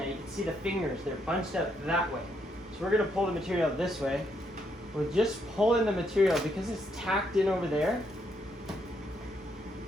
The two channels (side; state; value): both; normal; correlation 0.75